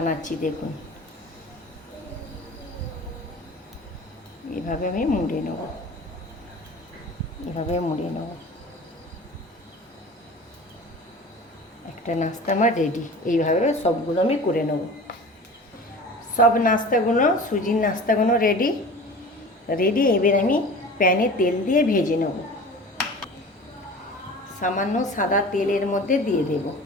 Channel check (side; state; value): both; normal; correlation 0.39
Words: দেখুন। এভাবে আমি মুড়ে নেব, এভাবে মুড়ে নেব। একটা নাস্তা আমার রেডি। এইভাবে সবগুলো আমি করে নেব। সব নাস্তাগুলো, সুজির নাস্তাগুলো রেডি। এবার আমি প্যানে তেল দিয়ে ভেজে নেব। সামান্য সাদা তেলের মধ্যে দিয়ে দেব,